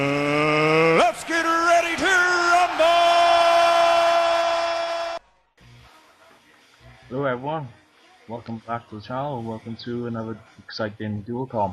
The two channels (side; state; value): both; identical; correlation 1.00